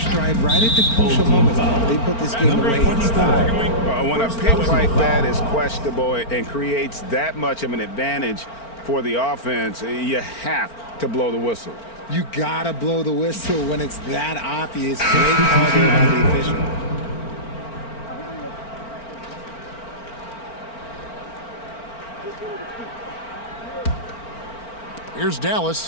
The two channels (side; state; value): right; late; 4.4 ms